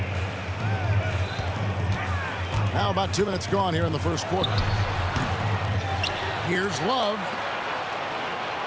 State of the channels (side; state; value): both; identical; correlation 1.00